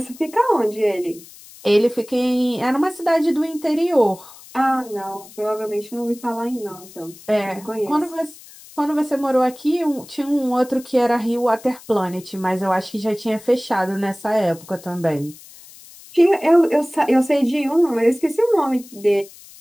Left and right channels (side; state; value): left; noise; hiss, 20 dB below the sound